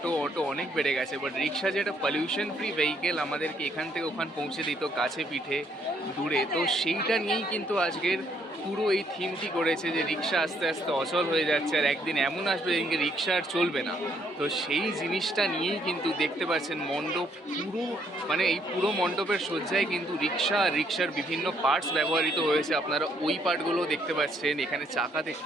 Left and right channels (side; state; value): both; normal; correlation 0.70